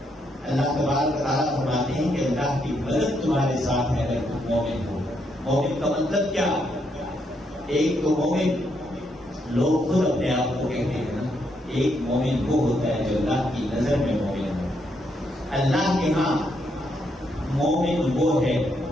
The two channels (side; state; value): both; normal; correlation 0.77